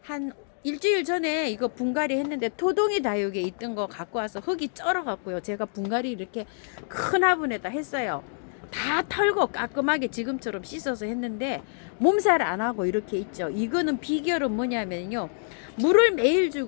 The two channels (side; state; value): right; silent; digital silence